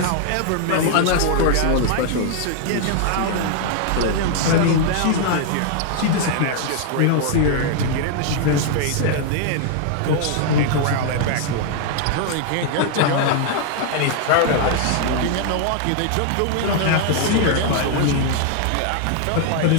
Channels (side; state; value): both; different; correlation 0.00